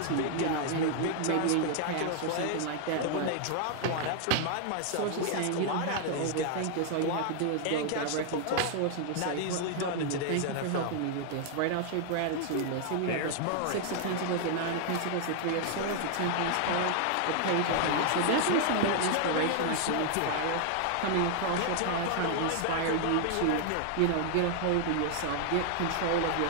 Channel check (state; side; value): different; both; correlation 0.00